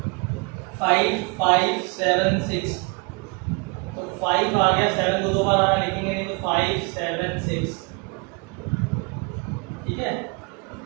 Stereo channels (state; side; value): quieter; left; 31.2 dB